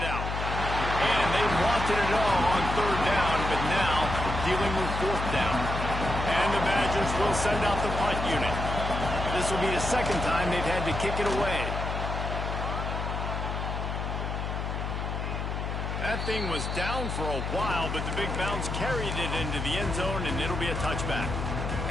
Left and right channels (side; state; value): left; noise; hum, 3 dB below the sound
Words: And they wanted it all on third down, but now dealing with fourth down. And the Badgers will send out the punt unit. This will be the second time they've had to kick it away. That thing was down for a while, but the big bounce carried it into the end zone, and it'll be a touchback.